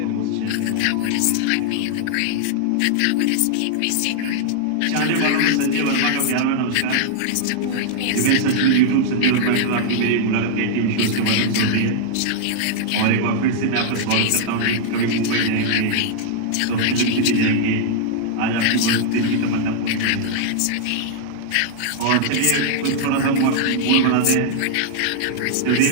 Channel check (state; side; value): different; both; correlation 0.00